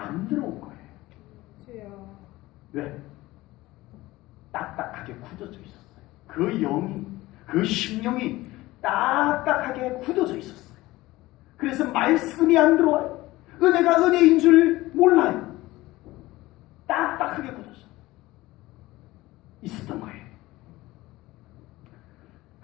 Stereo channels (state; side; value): quieter; right; 18.6 dB